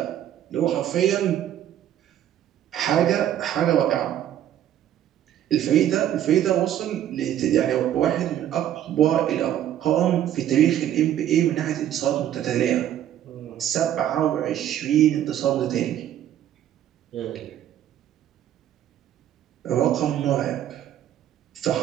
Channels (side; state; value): left; quieter; 11.2 dB